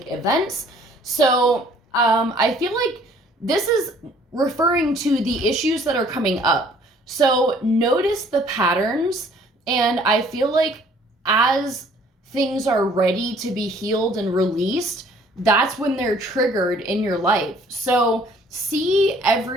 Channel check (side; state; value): both; normal; correlation 0.57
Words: events. So I feel like this is referring to the issues that are coming up. So notice the patterns, and I feel like as things are ready to be healed and released, that's when they're triggered in your life. So see